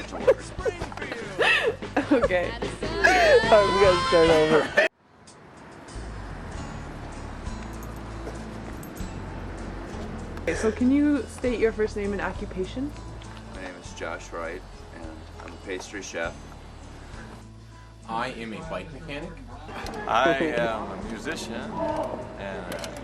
to work. Okay. Alright, we gotta start over. Okay, so can you state your first name and occupation? My name is Josh Wright, and I'm a pastry chef. I am a bike mechanic. I am a musician, and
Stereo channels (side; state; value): both; identical; correlation 1.00